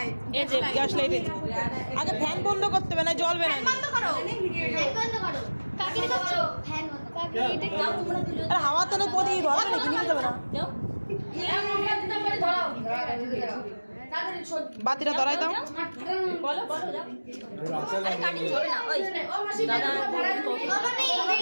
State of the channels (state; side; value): inverted; both; correlation -1.00